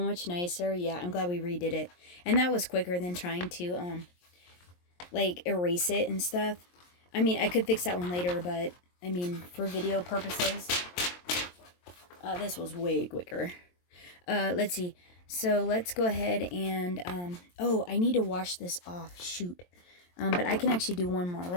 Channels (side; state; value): right; late; 23 ms